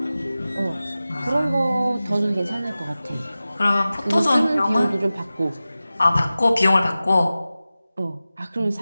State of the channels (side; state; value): both; inverted; correlation -0.96